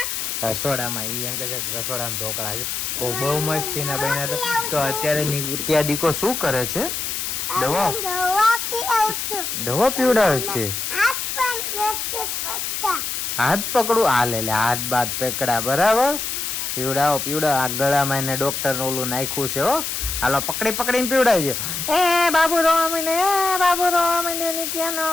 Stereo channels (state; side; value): noise; left; hiss, 3 dB below the sound